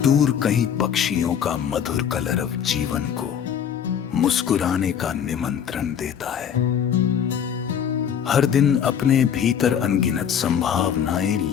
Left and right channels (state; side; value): quieter; right; 8.4 dB